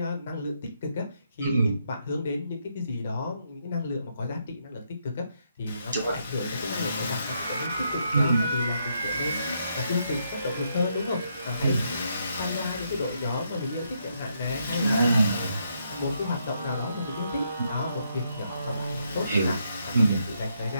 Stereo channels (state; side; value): inverted; both; correlation -0.77